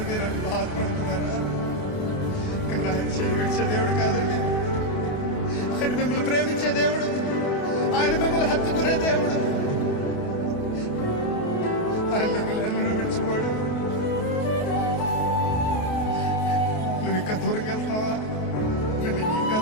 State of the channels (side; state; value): right; late; 28 ms